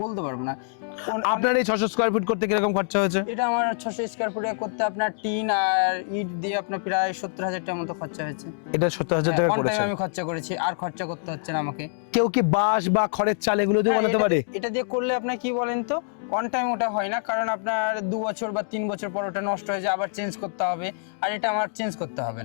বলতে পারবো না। আপনার এই 600 স্কয়ার ফিট করতে কিরকম খরচা হয়েছে? এটা আমার 600 স্কয়ার ফুটে করতে আপনার টিন আর ইট দিয়ে আপনার প্রায় 70,000 টাকার মতো খরচা হয়েছে। এটা 70,000 টাকা ওয়ান টাইম করেছে। আমি খরচা করেছি, আর খরচা করতে হচ্ছে না আমাকে। কেউ কি বাঁশ বা খড়ের চাল এগুলো দিয়ে হ্যাঁ, বানাতে পারে? এটা দিয়ে করলে আপনার কি বলেন তো, অন টাইম ওটা হয় না, কারণ আপনার 2 বছর বা 3 বছর পর ওটা নষ্ট হয়ে যায়, আবার চেঞ্জ করতে হবে। আর এটা আমার চেঞ্জ করতে হবে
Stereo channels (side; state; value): right; silent; digital silence